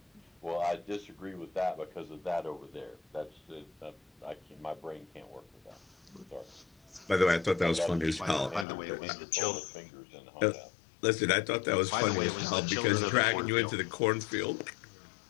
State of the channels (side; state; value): right; drops out; at 8.7 s